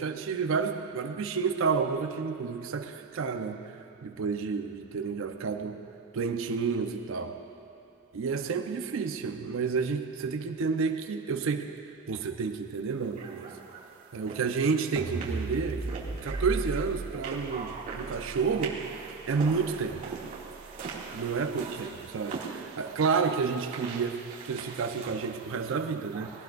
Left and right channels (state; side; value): quieter; left; 4.8 dB